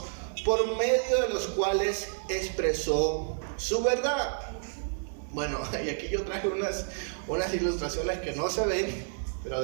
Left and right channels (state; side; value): silent; left; 58 dB below the other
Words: por medio de los cuales expresó su verdad. Bueno, y aquí yo traje unas ilustraciones que no se ven, pero